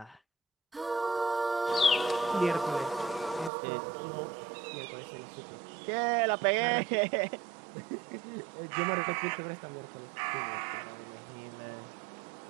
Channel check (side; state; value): left; drops out; at 3.5 s